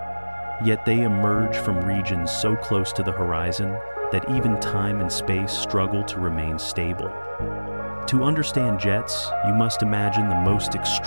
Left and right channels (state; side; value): inverted; both; correlation -1.00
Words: Yet they emerge from regions so close to the horizon that even time and space struggle to remain stable. To understand jets, you must imagine the most